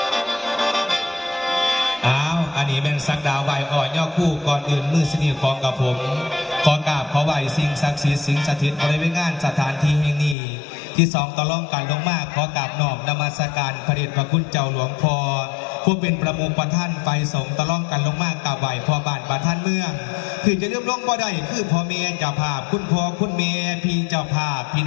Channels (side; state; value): right; drops out; at 10.4 s